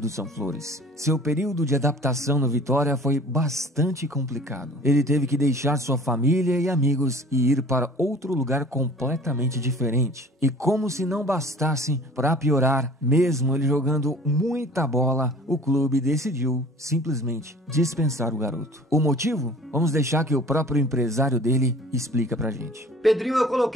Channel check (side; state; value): both; normal; correlation 0.46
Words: são flores. Seu período de adaptação no Vitória foi bastante complicado. Ele teve que deixar sua família e amigos e ir para outro lugar completamente diferente. E como se não bastasse, para piorar, mesmo ele jogando muita bola, o clube decidiu simplesmente dispensar o garoto. O motivo? Vamos deixar que o próprio empresário dele explica pra gente. Pedrinho eu